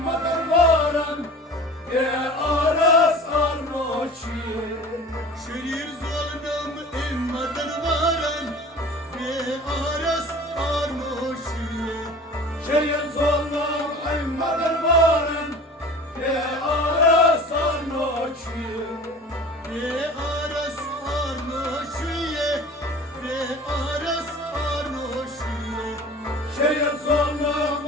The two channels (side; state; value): both; normal; correlation 0.41